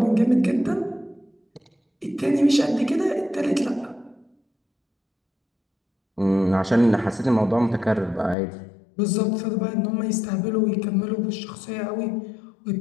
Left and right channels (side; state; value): right; drops out; at 8.3 s